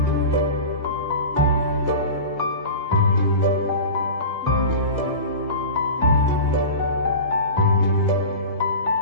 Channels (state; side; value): inverted; both; correlation -0.32